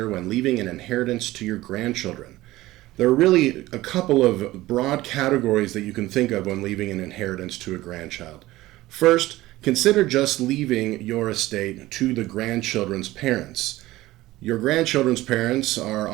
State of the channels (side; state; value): left; quieter; 17.4 dB